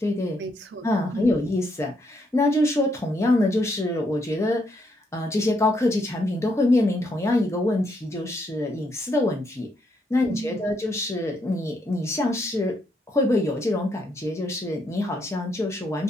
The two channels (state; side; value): normal; both; correlation 0.76